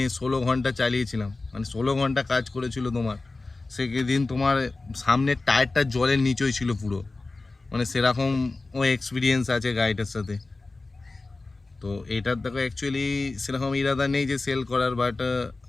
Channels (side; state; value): right; quieter; 3.4 dB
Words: 16 ঘন্টা চালিয়েছিলাম, মানে 16 ঘন্টা কাজ করেছিল তোমার। সেদিন তোমার সামনের টায়ারটা জলের নিচেই ছিল পুরো, মানে সেরকম ও এক্সপিরিয়েন্স আছে গাড়িটার সাথে। তো এটার দেখো অ্যাকচুয়ালি সেরকম ইরাদা নেই যে সেল করার, বাট